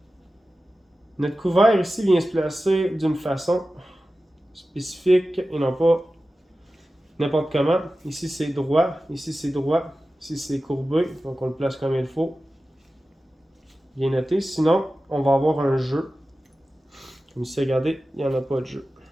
couvert ici vient se placer d'une façon spécifique et non pas n'importe comment. Ici c'est droit, ici c'est droit, ici c'est courbé, donc on le place comme il faut. Bien noté, sinon on va avoir un jeu. Comme ici, regardez, il n'y en a pas de jeu.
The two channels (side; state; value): both; normal; correlation 0.95